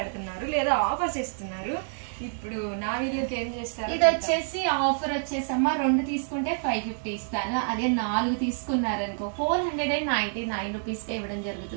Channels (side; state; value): left; silent; digital silence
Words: లేదా ఆఫర్స్ ఇస్తున్నారు. ఇప్పుడు నా వీడియోకి ఏం చేస్తారు? ఇది వచ్చేసి ఆఫర్ వచ్చేసమ్మా 2 తీసుకుంటే 550 ఇస్తాను. అదే 4 తీసుకున్నారనుకో 499 రూపీస్ ఇవ్వడం